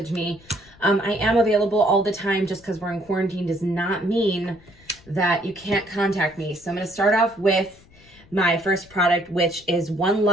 me. I am available all the time. Just because we're in quarantine does not mean that you can't contact me. So I'm going to start off with my first product, which is One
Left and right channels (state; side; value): noise; left; rumble, 26 dB below the sound